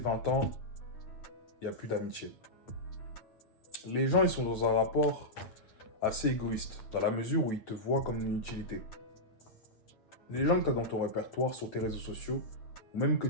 ans, il n'y a plus d'amitié. Les gens, ils sont dans un rapport assez égoïste, dans la mesure où ils te voient comme une utilité. Les gens que tu as dans ton répertoire, sur tes réseaux sociaux, ou même que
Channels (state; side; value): late; right; 9.1 ms